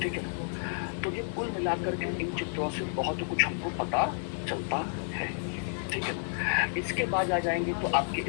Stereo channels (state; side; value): silent; right; digital silence